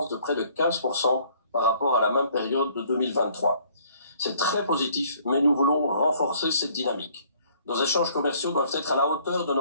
de près de 15% par rapport à la même période de 2023. C'est très positif, mais nous voulons renforcer cette dynamique. Nos échanges commerciaux doivent être à la hauteur de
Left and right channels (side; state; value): both; inverted; correlation -0.60